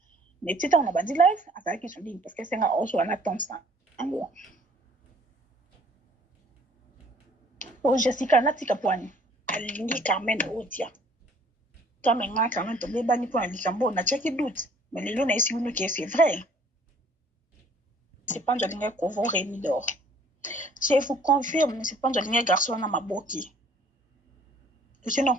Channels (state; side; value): normal; both; correlation 0.57